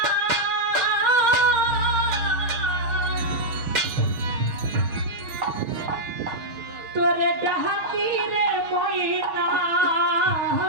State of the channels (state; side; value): late; left; 6.2 ms